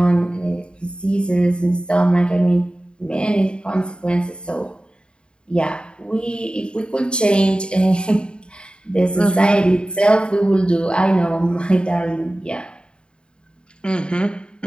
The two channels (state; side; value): late; right; 0.052 ms